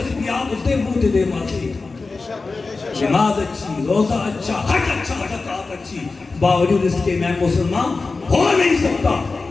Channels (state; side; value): quieter; right; 3.9 dB